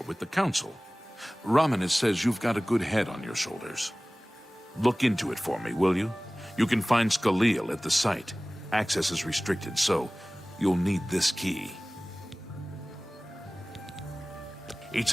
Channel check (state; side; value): normal; both; correlation 0.98